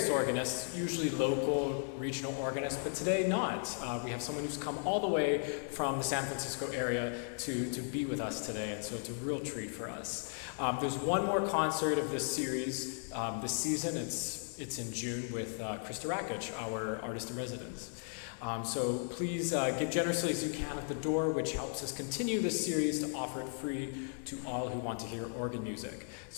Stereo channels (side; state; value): right; silent; 54 dB below the other